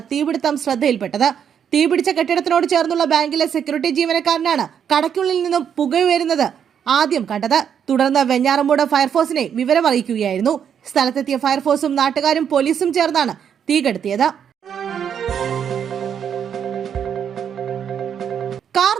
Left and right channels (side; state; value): left; quieter; 8.2 dB